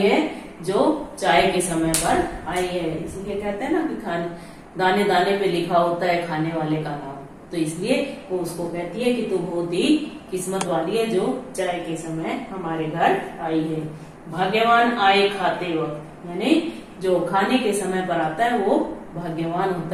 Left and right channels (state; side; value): identical; both; correlation 1.00